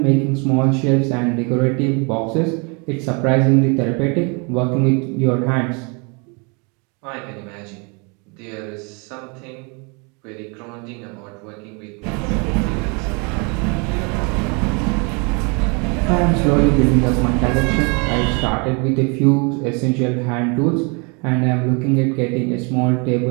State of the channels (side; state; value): left; quieter; 32.6 dB